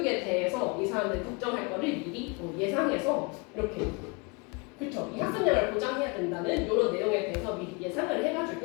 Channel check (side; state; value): right; quieter; 30.3 dB